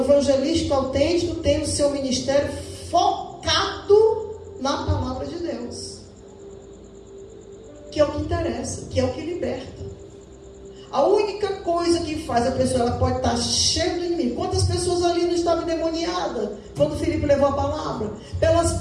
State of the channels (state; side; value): identical; both; correlation 1.00